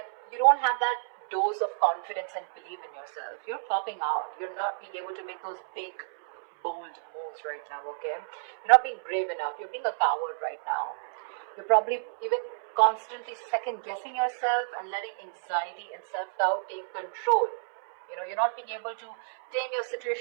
you don't have that dose of confidence and belief in yourself. You're popping out. You're not being able to make those big, bold moves right now, okay? You're not being brave enough. You're being a coward right now. You're probably even constantly second guessing yourself and letting anxiety and self-doubt take control. You know, you're not being able to tame your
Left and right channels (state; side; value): silent; left; 58 dB below the other